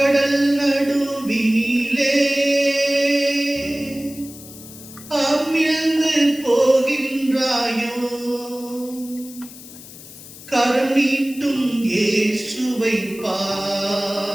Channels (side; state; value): left; noise; hiss, 17 dB below the sound